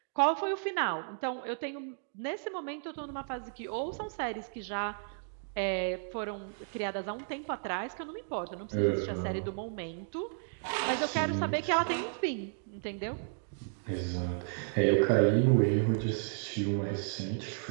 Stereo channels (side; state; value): left; silent; digital silence